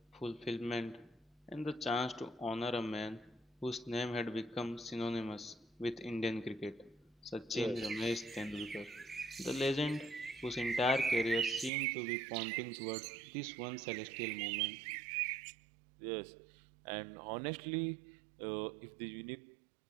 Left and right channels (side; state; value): left; drops out; at 11.7 s